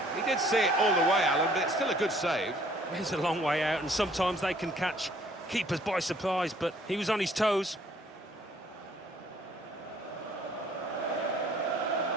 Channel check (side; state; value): both; normal; correlation 0.60